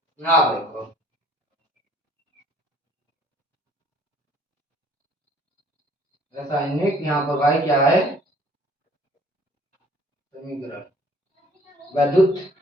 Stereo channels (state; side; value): normal; both; correlation 0.56